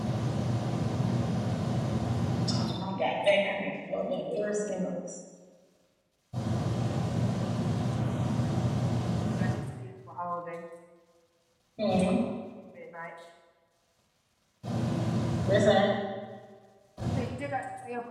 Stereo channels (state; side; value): identical; both; correlation 1.00